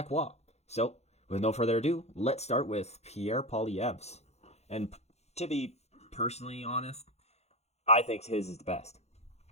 So, with no further ado, let's start with Pierre Poilievre's. And to be personally honest, I think his is the best.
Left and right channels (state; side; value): late; right; 0.31 ms